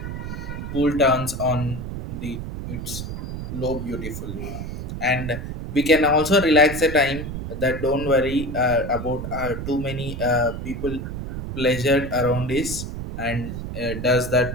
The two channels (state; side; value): noise; right; rumble, 6 dB below the sound